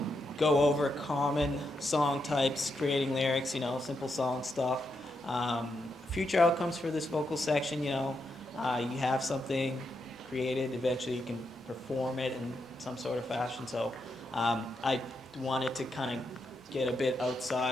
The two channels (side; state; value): both; normal; correlation 0.83